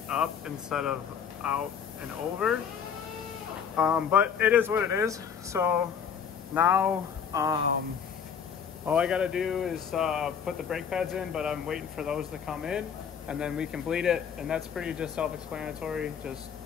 up instead of out and over. But it is what it is. So now all I gotta do is put the brake pads in, but I'm waiting for those to come in and then we can bleed it. And that's pretty just self-explanatory, just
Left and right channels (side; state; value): right; quieter; 7.5 dB